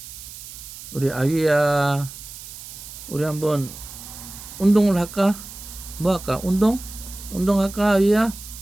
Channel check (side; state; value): right; noise; hiss, 14 dB below the sound